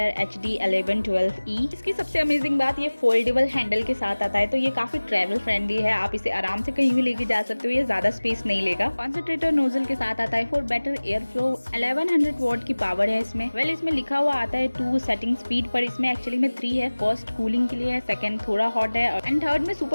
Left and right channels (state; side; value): inverted; both; correlation -1.00